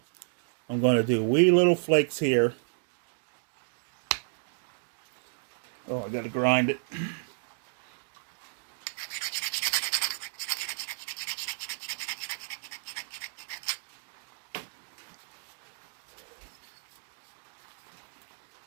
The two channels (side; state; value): left; silent; digital silence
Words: I'm going to do wee little flakes here. Oh, I got to grind it.